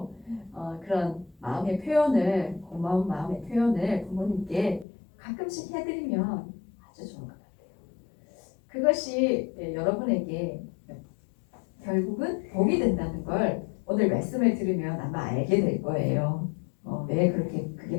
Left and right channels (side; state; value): right; drops out; at 4.9 s